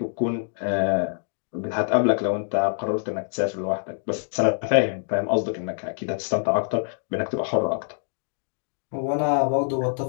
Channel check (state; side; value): silent; right; 62 dB below the other